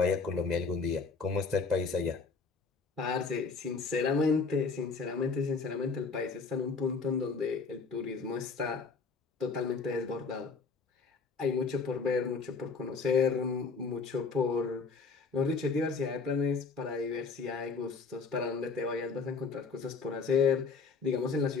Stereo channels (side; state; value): right; quieter; 4.7 dB